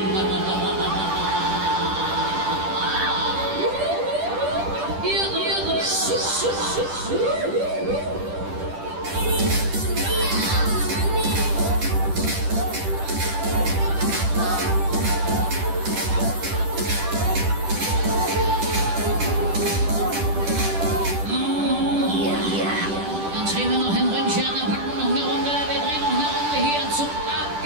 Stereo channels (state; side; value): late; left; 10 ms